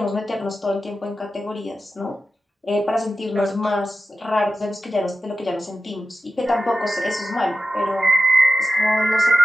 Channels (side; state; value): both; normal; correlation 0.93